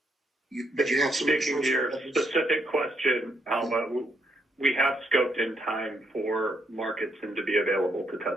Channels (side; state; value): both; normal; correlation 0.75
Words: But you have some. Speaking to your specific question, Alba, we have scoped in time for market sim to be available to